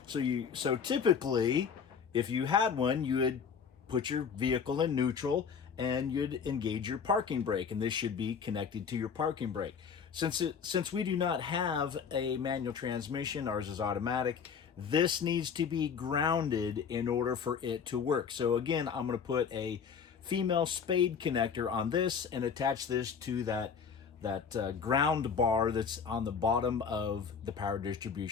So typically, if you had one, you would put your vehicle in neutral and you'd engage your parking brake, and this should be connected to your parking brake. Since we do not have a manual transmission, ours is automatic, this needs to be grounded in order for it to work. So again, I'm going to put a female spade connector on this and attach this to that ground bar that's on the bottom of the power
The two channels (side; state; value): right; quieter; 6.6 dB